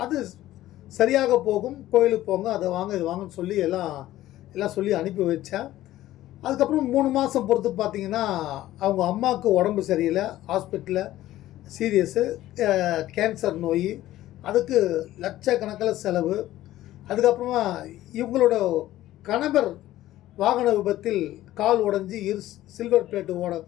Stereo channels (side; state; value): right; quieter; 14.7 dB